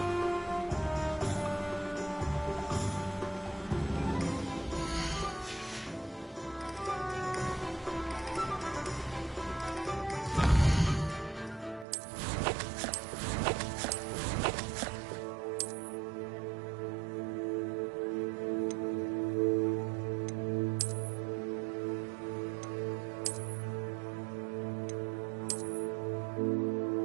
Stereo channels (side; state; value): left; drops out; at 11.9 s